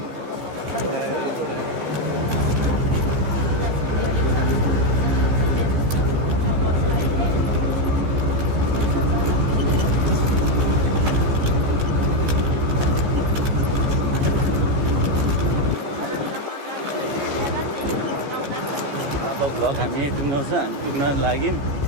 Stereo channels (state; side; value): late; left; 14 ms